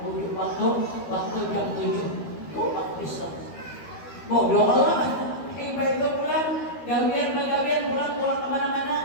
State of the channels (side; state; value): right; late; 13 ms